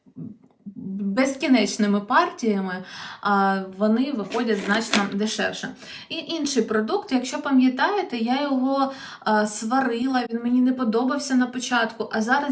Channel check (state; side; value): identical; both; correlation 1.00